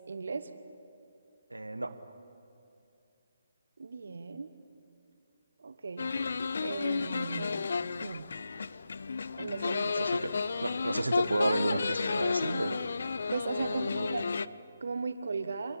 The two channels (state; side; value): inverted; both; correlation -0.90